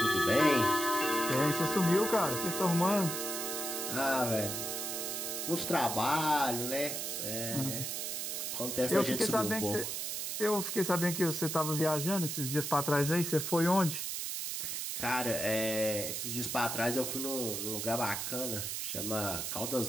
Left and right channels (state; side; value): noise; right; hiss, 3 dB below the sound